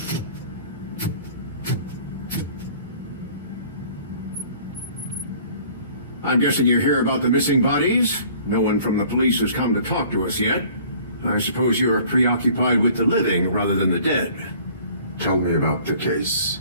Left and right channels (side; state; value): both; inverted; correlation -0.52